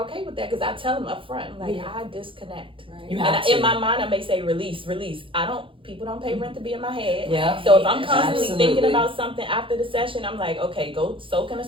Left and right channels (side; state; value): left; late; 0.25 ms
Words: okay with that because I tell them up front, like, I disconnect. You And have to. in my mind, I may say release. People don't pay rent to be in my head. Yeah. So if I'm constantly Absolutely. thinking about something after the session, I'm like, okay, go soak in a